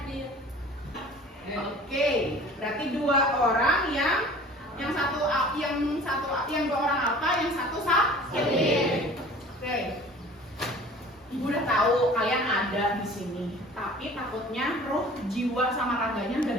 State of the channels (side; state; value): both; normal; correlation 0.45